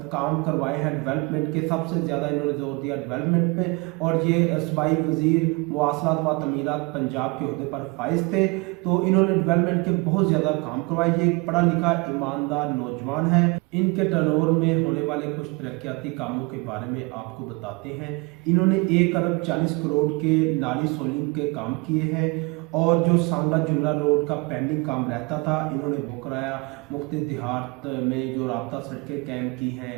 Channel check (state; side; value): quieter; left; 27.7 dB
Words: काम करवाए हैं डेवलपमेंट के, सबसे ज़्यादा इन्होंने जोर दिया डेवलपमेंट पे। और ये सूबाई वजीर मुवासलात व तमीरात पंजाब के ओहदे पर फाइज थे, तो इन्होंने डेवलपमेंट के बहुत ज़्यादा काम करवाए। ये एक पढ़ा लिखा ईमानदार नौजवान है। इनके टर्नओवर में होने वाले कुछ तरक्याती कामों के बारे में आपको बताते हैं। इन्होंने 1 अरब 40 करोड़ के नाली सोलिंग के काम किए हैं, और जो सांगा जुमला रोड का पेंडिंग काम रहता था इन्होंने वो कराया। मुख्तलिफ देहात में जो राब्ता सड़कें कायम की हैं